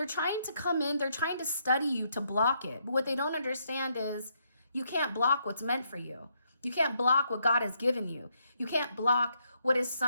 trying to come in, they're trying to study you to block it. But what they don't understand is you can't block what's meant for you. You can't block what God has given you. You can't block what is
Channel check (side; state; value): both; inverted; correlation -0.75